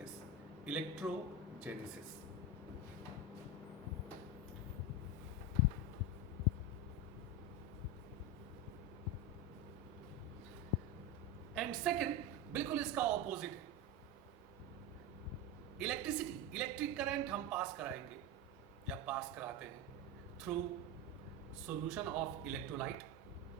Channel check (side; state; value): both; normal; correlation 0.17